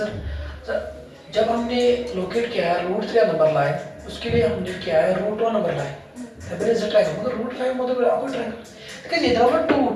जब हमने लोकेट किया है √3 नंबर लाइन, उसके लिए हमने किया है √1 नंबर लाइन. तब इज ट्रायंगल मतलब √5 मतलब आपको ट्रायंगल. देखिए इधर पर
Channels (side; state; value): both; identical; correlation 1.00